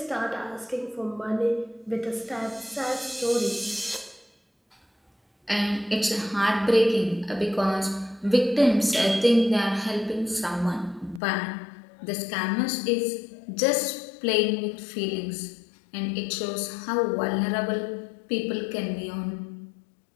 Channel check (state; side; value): drops out; right; at 11.2 s